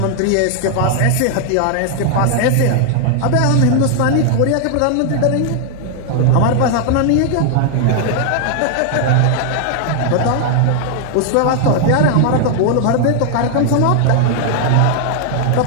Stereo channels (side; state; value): both; different; correlation 0.00